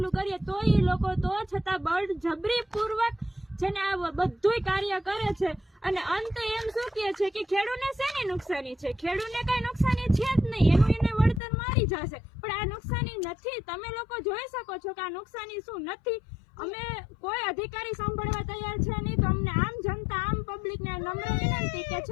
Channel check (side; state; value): right; drops out; at 11.4 s